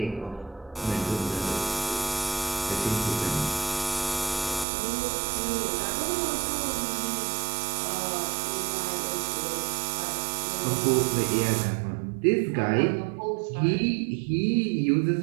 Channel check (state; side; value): drops out; left; at 4.7 s